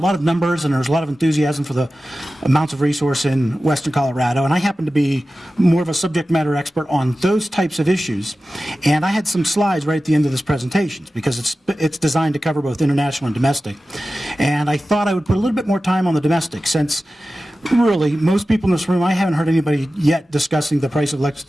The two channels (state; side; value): normal; both; correlation 0.95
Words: of numbers and there was a lot of enthusiasm for the amounts of resource in western Colorado. And I happen to be more of a subject matter expert on those types of issues. And I had some slides right at the end of this presentation because it's designed to cover both international and domestic. And I thought I would put a little bit more time on the domestic, since really most people in this room, I haven't heard anybody yet discussing the price of